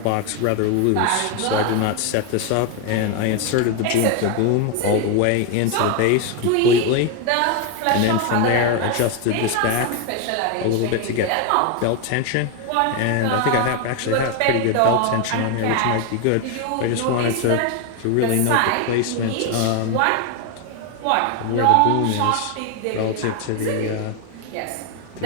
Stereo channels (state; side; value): different; both; correlation 0.01